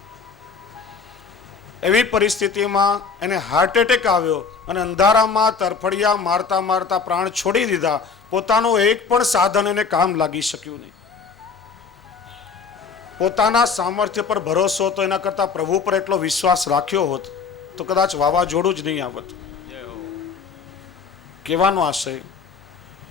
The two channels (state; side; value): quieter; right; 5.4 dB